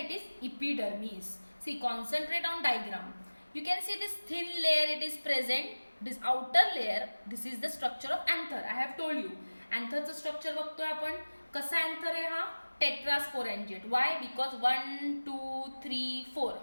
it is epidermis. See, concentrate on diagram. You can see this thin layer, it is present. This outer layer, this is the structure of anther. I have told you, antherचं structure बघतोय आपण. कसा anther आहे हा? Tetrasporangate. Why? Because 1, 2, 3, 4.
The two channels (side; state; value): both; inverted; correlation -1.00